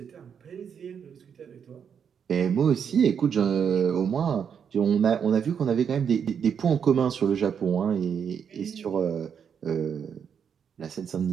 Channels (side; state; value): left; quieter; 7.4 dB